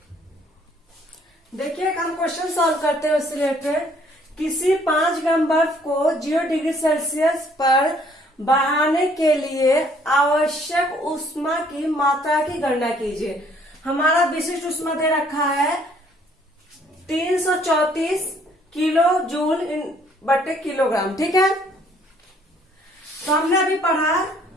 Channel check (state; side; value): normal; both; correlation 0.62